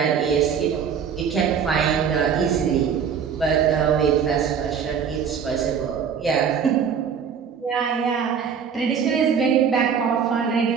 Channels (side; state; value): left; quieter; 7.1 dB